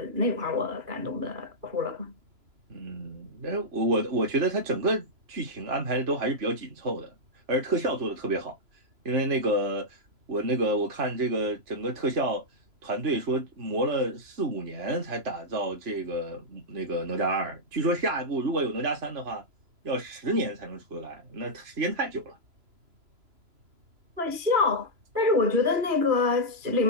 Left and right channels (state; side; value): late; left; 3.0 ms